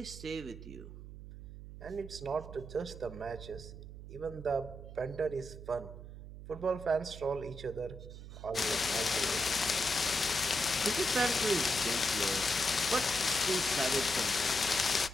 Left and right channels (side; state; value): right; noise; hum, 12 dB below the sound